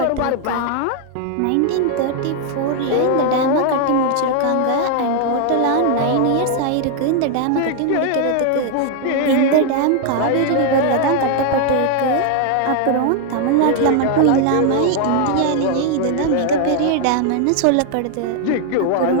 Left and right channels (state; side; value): different; both; correlation 0.00